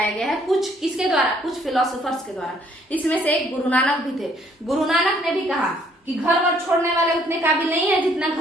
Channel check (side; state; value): both; normal; correlation 0.64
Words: गया है, कुछ किसके द्वारा, कुछ फिलोसोफर्स के द्वारा। इसमें से एक गुरु नानक भी थे। गुरु नानक ने भी कहा कि घर वर छोड़ने वाले उतने काबिल नहीं है जितना